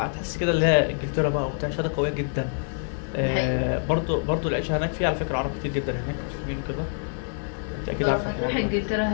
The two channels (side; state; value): right; silent; 59 dB below the other